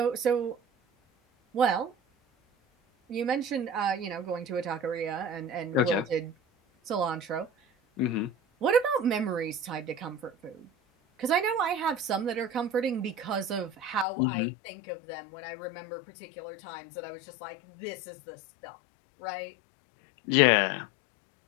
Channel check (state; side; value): drops out; right; at 14.1 s